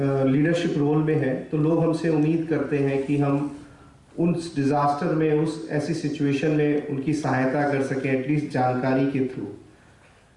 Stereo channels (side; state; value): both; identical; correlation 1.00